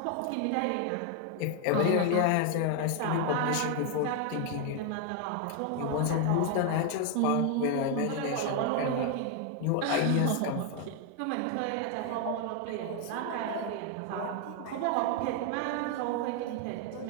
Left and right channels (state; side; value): different; both; correlation 0.01